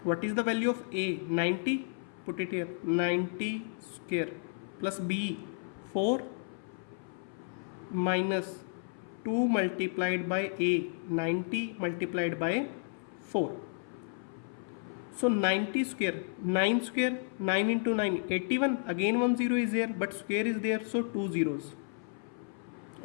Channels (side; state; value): right; silent; 56 dB below the other